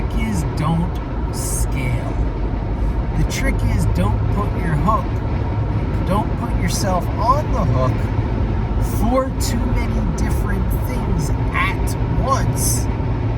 is don't scale. The trick is don't put yourself on the hook for too many different things at once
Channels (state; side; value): identical; both; correlation 1.00